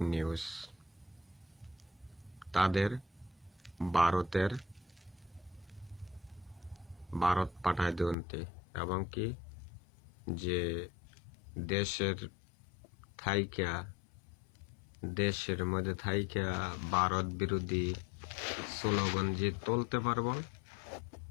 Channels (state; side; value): drops out; right; at 8.2 s